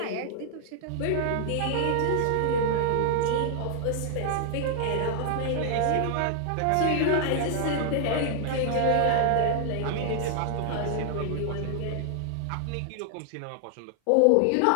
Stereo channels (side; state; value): both; different; correlation 0.00